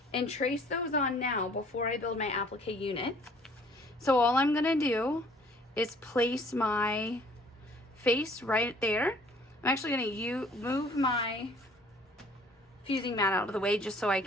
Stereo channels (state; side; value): normal; both; correlation 0.56